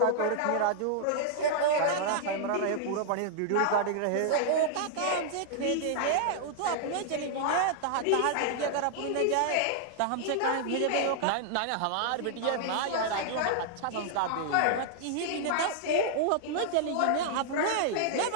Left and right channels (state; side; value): different; both; correlation -0.01